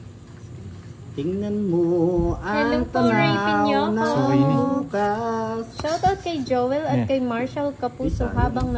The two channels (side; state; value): both; identical; correlation 1.00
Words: Tingnan mo Hello ang po, Rapin tanaw Yoko. ng bukas. Shoutout kay Joel at Yeah. kay Marshall Kapuso habang